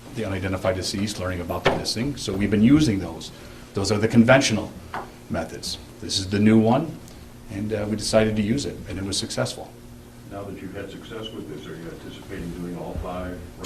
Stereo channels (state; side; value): identical; both; correlation 1.00